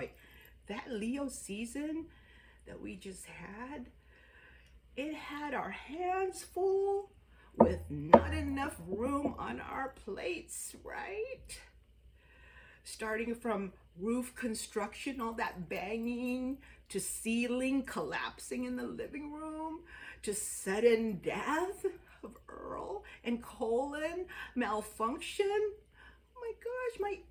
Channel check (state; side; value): identical; both; correlation 1.00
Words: that Leo season that we just had, it had our hands full with not enough room on our plates, right? Starting from roof construction, all that banging, to ceiling collapsing in the living room, to sudden death of Earl and colon malfunction. Oh my gosh, my